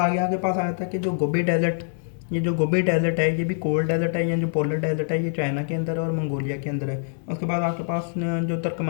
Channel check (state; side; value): silent; right; digital silence